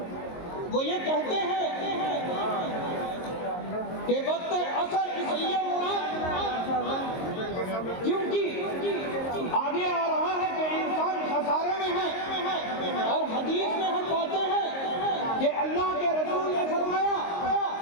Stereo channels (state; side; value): late; right; 22 ms